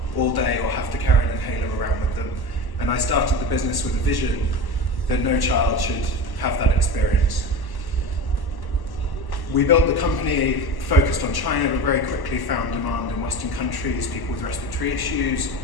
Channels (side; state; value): right; late; 1.1 ms